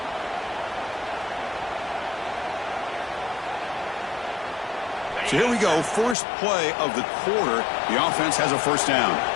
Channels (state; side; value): drops out; right; at 6.2 s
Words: So here we go. First play of the quarter. The offense has a first down.